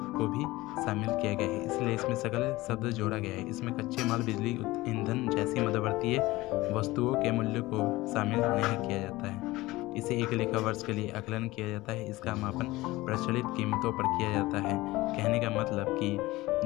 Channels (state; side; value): quieter; right; 19.3 dB